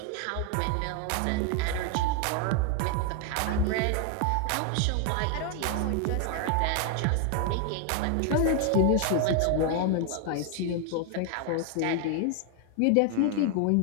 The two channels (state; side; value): different; both; correlation 0.01